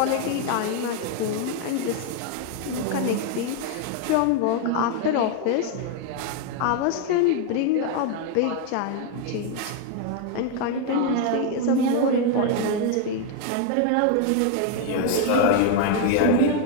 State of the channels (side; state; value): both; different; correlation 0.01